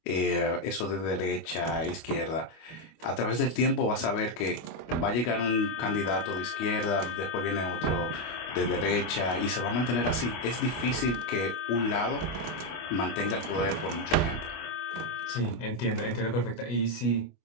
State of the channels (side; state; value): right; late; 25 ms